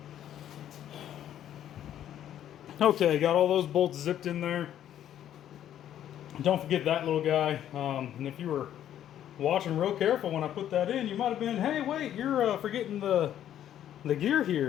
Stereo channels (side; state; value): right; quieter; 10.9 dB